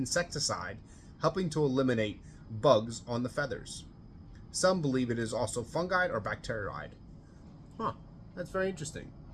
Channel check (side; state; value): both; identical; correlation 1.00